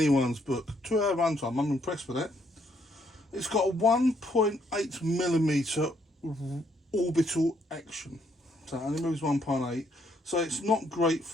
book. 2 hour runtime, I'm impressed with that. It's got a 1.8mm orbital action, so it only moves 1.8. So it's not great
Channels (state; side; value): normal; both; correlation 0.71